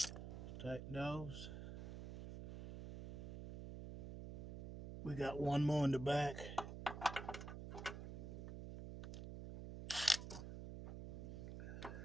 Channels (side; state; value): right; noise; hum, 8 dB below the sound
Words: Tighten those. We got one more in the back.